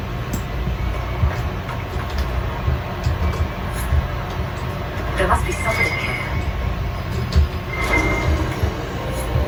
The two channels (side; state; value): both; identical; correlation 1.00